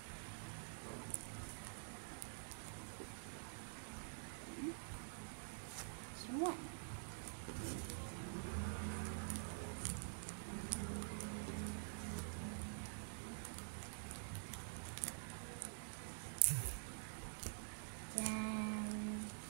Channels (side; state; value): left; silent; digital silence